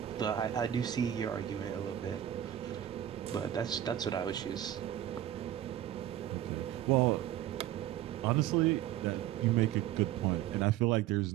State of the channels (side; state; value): left; quieter; 12.1 dB